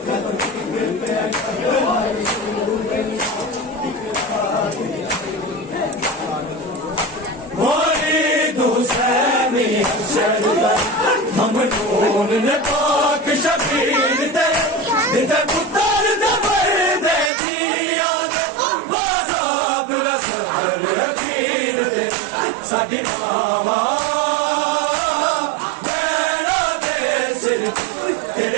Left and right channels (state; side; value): drops out; left; at 17.3 s